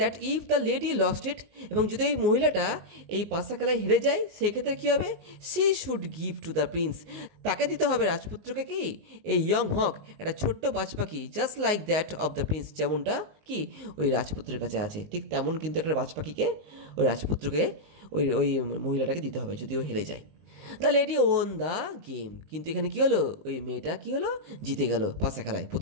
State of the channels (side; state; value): left; late; 19 ms